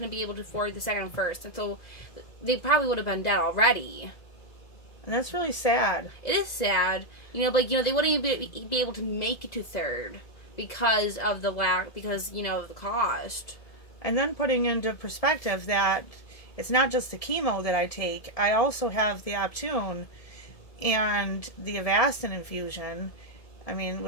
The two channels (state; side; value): late; right; 2.0 ms